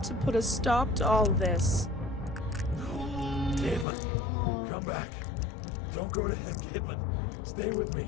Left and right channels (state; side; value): drops out; right; at 3.9 s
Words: to put a stop to all this. No. Caitlin, come back. Don't go to him, Caitlin. Stay with